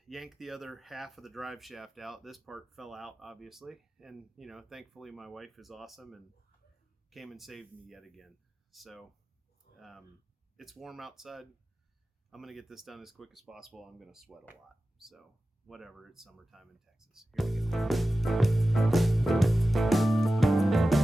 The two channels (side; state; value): both; normal; correlation 0.95